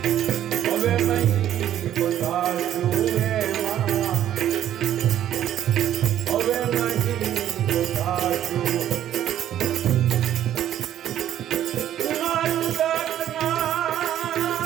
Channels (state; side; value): quieter; left; 11.4 dB